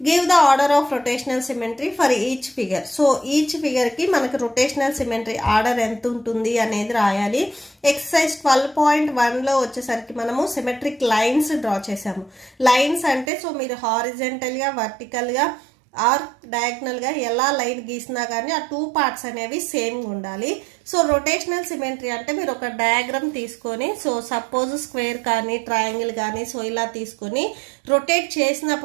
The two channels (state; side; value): drops out; left; at 13.3 s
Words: Give the order of rotational symmetry for each figure. So each figure కి మనకు rotational symmetry order ఎంత ఉంటుంది అనేది రాయాలి. Exercise 12.1 లో వచ్చేసరికి మనము symmetric lines డ్రా చేసాము. లైన్స్ అంటే సో మీరు హారిజంటల్ గా వర్టికల్ గా ఆర్ డయాగ్నల్ గా ఎలా లైన్ గీసినా కానీ ఆ టూ పార్ట్స్ అనేవి సేమ్ ఉండాలి. సో రొటేషనల్ సిమెట్రీ అంటే మీరు ఒక డయాగ్రామ్ తీసుకొని సో సపోజ్ స్క్వేర్ కానీ ట్రయాంగిల్ కానీ సో ఇలా తీసుకొని రొటేట్